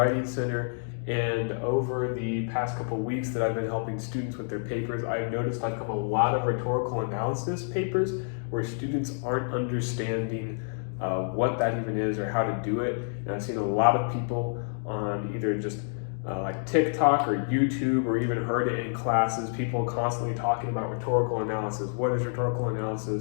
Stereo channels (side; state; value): right; silent; digital silence